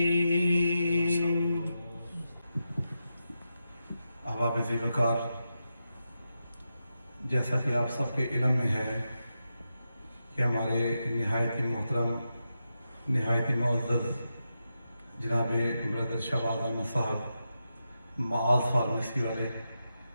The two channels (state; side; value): inverted; both; correlation -0.88